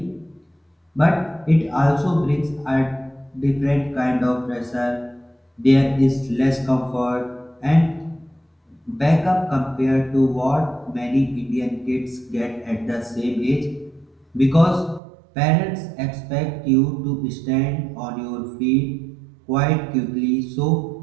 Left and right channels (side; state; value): left; drops out; at 15.0 s